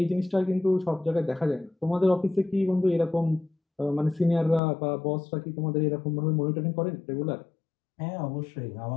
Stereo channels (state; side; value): drops out; right; at 4.6 s